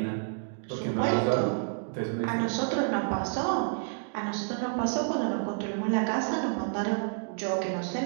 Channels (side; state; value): left; silent; digital silence